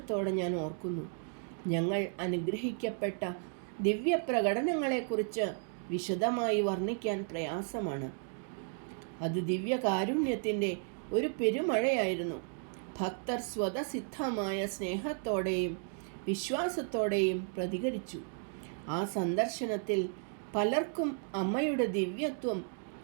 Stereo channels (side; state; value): left; silent; 55 dB below the other